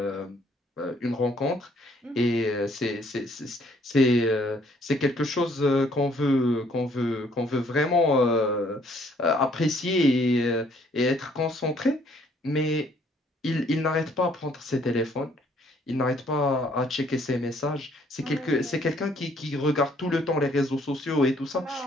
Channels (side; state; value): both; normal; correlation 0.63